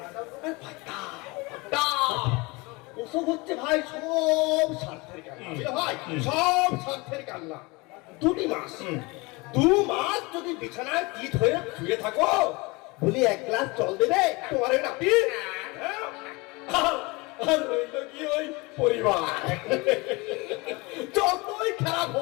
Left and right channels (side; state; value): right; quieter; 25.4 dB